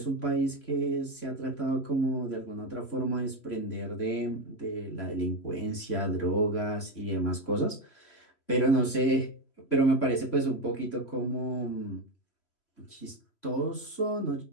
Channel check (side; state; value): right; late; 3.0 ms